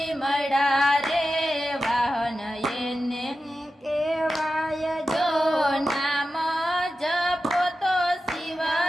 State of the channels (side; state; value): both; normal; correlation 0.92